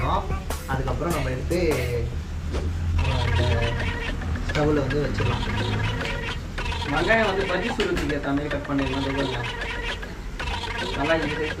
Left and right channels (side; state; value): both; identical; correlation 1.00